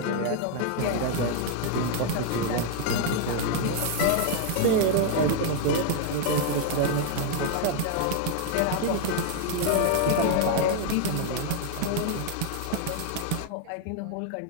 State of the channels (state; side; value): different; both; correlation 0.00